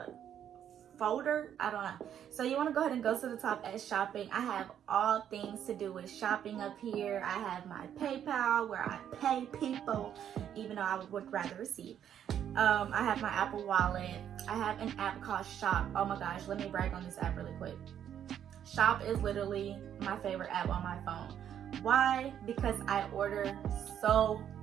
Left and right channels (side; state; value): left; quieter; 9.6 dB